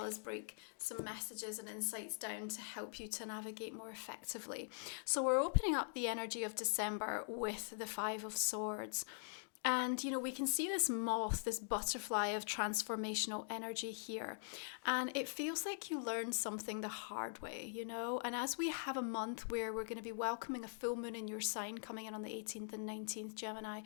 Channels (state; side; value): silent; right; digital silence